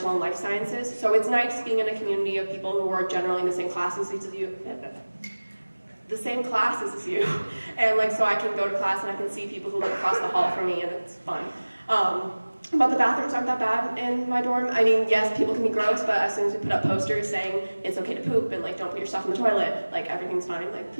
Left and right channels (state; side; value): inverted; both; correlation -1.00